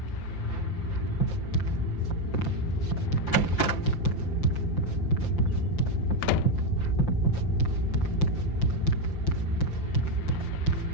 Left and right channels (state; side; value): late; right; 5.8 ms